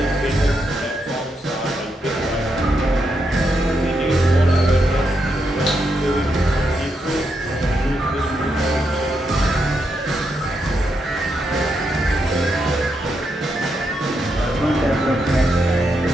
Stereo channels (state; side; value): normal; both; correlation 0.82